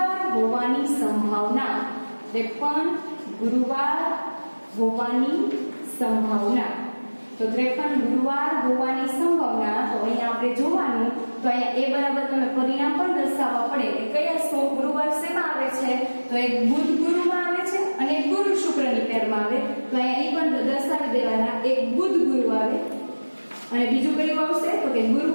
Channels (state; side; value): inverted; both; correlation -1.00